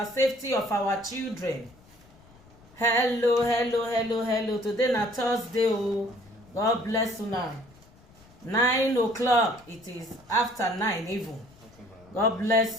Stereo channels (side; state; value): left; noise; rumble, 26 dB below the sound